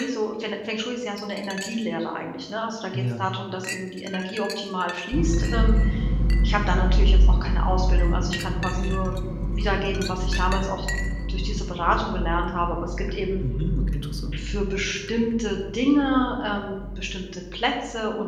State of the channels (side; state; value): both; identical; correlation 1.00